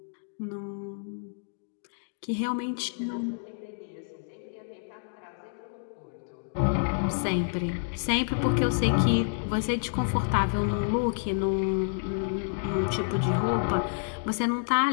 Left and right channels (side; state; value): right; silent; digital silence